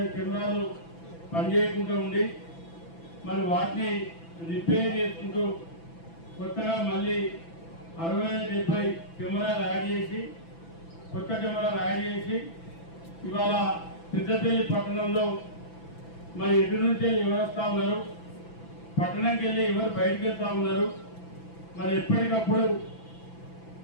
కెమెరాలు పనిచేయకుండా ఉండి మరి వాటిని రిపేర్ చేసుకుంటూ కొత్తగా మళ్ళీ 65-70 కెమెరాలు యాడ్ చేసి కొత్త కెమెరాలు యాడ్ చేసి ఇవాళ పెద్దపల్లి పట్టణంలో మరి ఎటు నుంచి ఎవరు వస్తూ ఉన్నారు, పట్టణంకి వెళ్ళి ఎవరు బయటకు వెళ్తా ఉన్నారు, మరి ఎప్పటికప్పుడు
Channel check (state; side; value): late; right; 6.0 ms